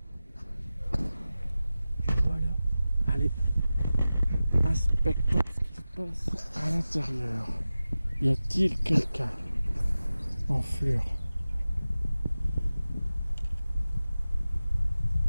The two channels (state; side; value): inverted; both; correlation -0.95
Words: Voilà. Allez. Inspectons ce qui se passe à l'intérieur. Y a-t-il quelqu'un en fleurs?